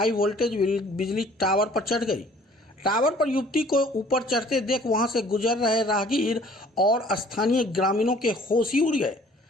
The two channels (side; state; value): both; normal; correlation 0.54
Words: वोल्टेज बिजली टावर पर चढ़ गई। टावर पर युवती को ऊपर चढ़ते देख वहां से गुजर रहे राहगीर और स्थानीय ग्रामीणों के होश ही उड़ गए।